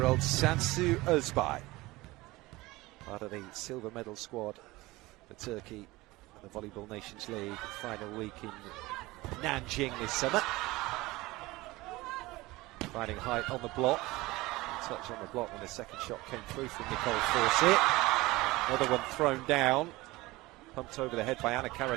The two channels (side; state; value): left; quieter; 20.3 dB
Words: Sansu Özbay, part of the silver medal squad for Turkey at the Volleyball Nations League final week in Nanjing this summer. Finding height on the block, touch on the block when the second shot came through from Nicole Fawcett. Another one thrown down, pumped over the head by Ana